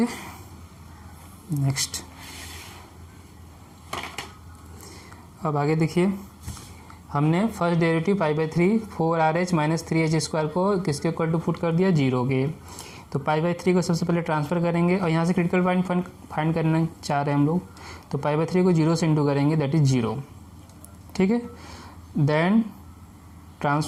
नेक्स्ट अब आगे देखिए, हमने फर्स्ट डेरिवेटिव पाई/3 4rh माइनस 3h स्क्वायर को किसके इक्वल टू पुट कर दिया 0 के। तो पाई/3 को सबसे पहले ट्रांसफ़र करेंगे और यहाँ से क्रिटिकल पॉइंट फाइंड करना चाह रहे हैं हम लोग, तो पाई/3 को 0 से इंटू करेंगे, दैट इज़ 0, ठीक है। Then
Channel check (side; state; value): both; identical; correlation 1.00